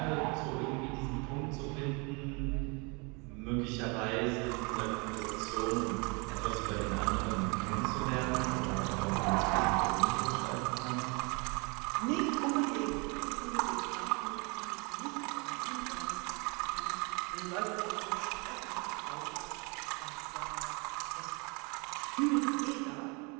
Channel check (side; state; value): left; quieter; 30.7 dB